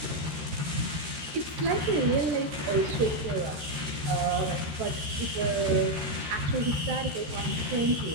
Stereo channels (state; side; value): late; left; 13 ms